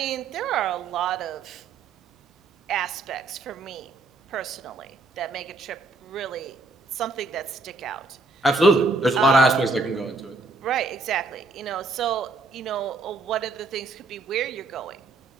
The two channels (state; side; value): quieter; left; 3.4 dB